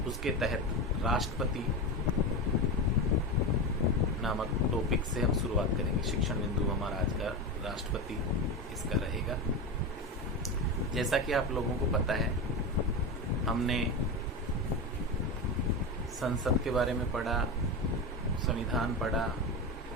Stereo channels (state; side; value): normal; both; correlation 0.20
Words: उसके तहत राष्ट्रपति नामक टॉपिक से हम शुरुआत करेंगे। शिक्षण बिंदु हमारा आज का राष्ट्रपति इसका रहेगा। जैसा कि आप लोगों को पता है, हमने संसद के बारे में पढ़ा, संविधान पढ़ा,